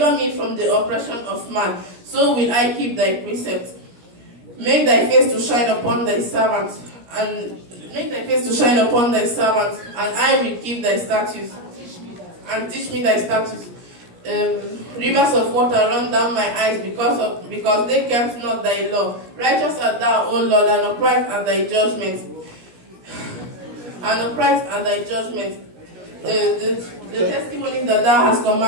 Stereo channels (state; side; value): late; left; 17 ms